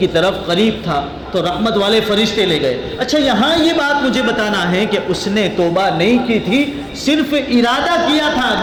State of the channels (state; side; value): identical; both; correlation 1.00